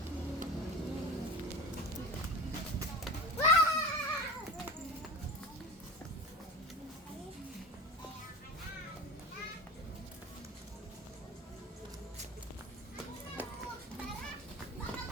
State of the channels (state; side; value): normal; both; correlation 0.31